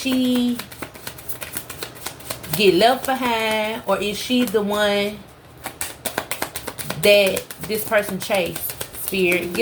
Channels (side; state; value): both; identical; correlation 1.00